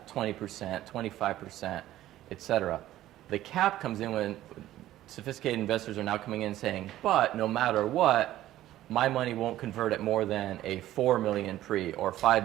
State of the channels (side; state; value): left; quieter; 14.1 dB